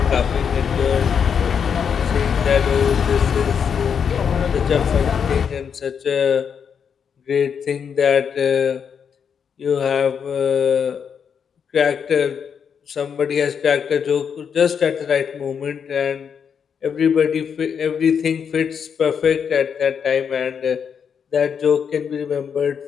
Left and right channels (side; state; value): right; quieter; 7.1 dB